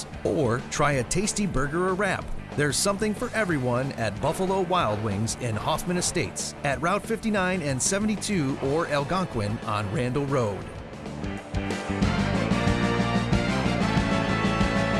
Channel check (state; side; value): identical; both; correlation 1.00